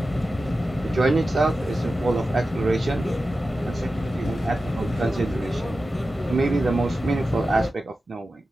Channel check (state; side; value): normal; both; correlation 0.93